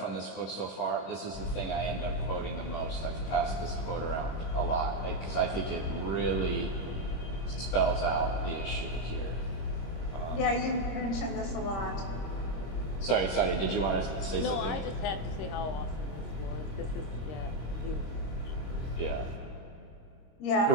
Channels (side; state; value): right; late; 26 ms